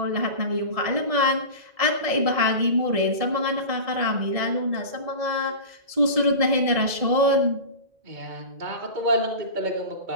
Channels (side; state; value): left; late; 1.7 ms